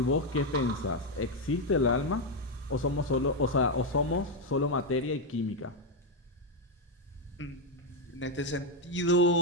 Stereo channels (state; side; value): normal; both; correlation 0.04